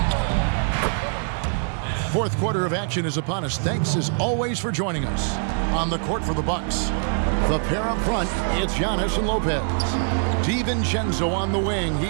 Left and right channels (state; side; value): silent; left; 59 dB below the other